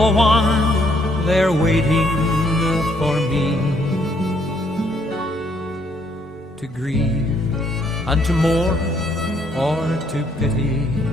one there waiting for me to grieve and to mourn or to pity.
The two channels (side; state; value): both; normal; correlation 0.69